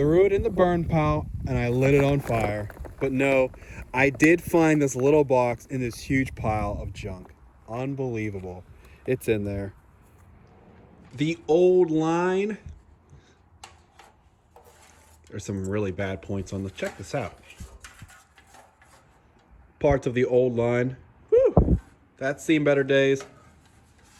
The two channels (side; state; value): both; identical; correlation 1.00